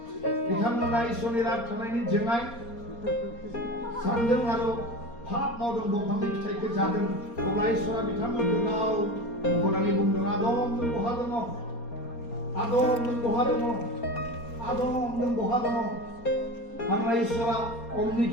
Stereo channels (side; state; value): right; late; 4.3 ms